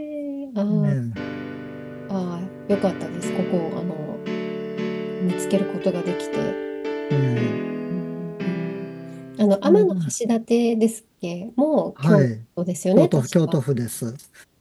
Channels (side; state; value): both; identical; correlation 1.00